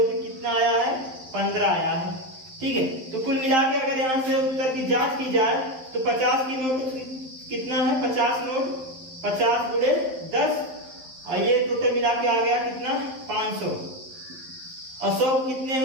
कि कितना आया है 15 आया है। ठीक है, तो कुल मिला के अगर यहाँ से उत्तर की जांच की जाए तो 50 की नोट कितना है 50 नोट 50 गुणे 10, और ये टोटल मिला के आ गया कितना 500, और 100 कितने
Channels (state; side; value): late; left; 11 ms